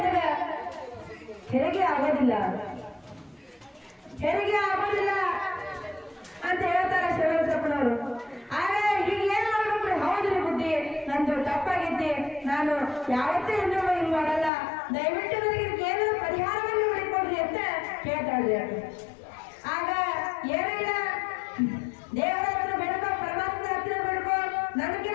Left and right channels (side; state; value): right; drops out; at 14.5 s